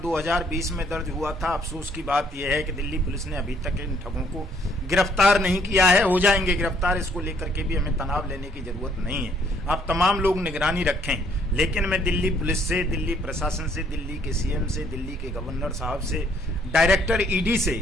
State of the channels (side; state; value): both; normal; correlation 0.65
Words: में दर्ज हुआ था। अफसोस की बात यह है कि दिल्ली पुलिस ने अभी तक इन ठगों को गिरफ्तार नहीं किया है। हो जाएंगे गिरफ्तार, इसको लेकर के भी हमें तनाव लेने की जरूरत नहीं है। आप तमाम लोग निगरानी रखें, लेकिन मैं दिल्ली पुलिस से, दिल्ली प्रशासन से, दिल्ली के CM से, दिल्ली के गवर्नर साहब से, डायरेक्टर ED से